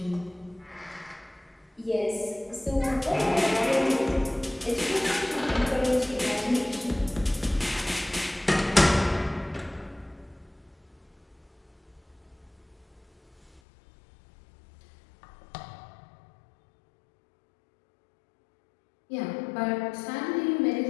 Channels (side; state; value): right; drops out; at 13.6 s